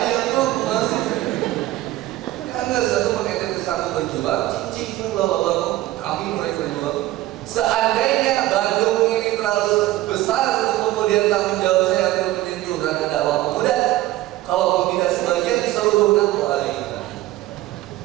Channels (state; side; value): quieter; left; 16.1 dB